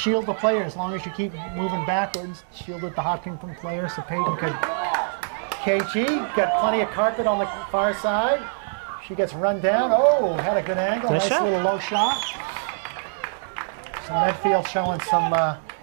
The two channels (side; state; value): left; silent; digital silence